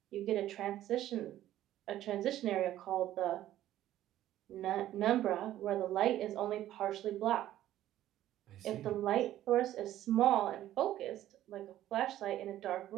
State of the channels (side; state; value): left; quieter; 13.2 dB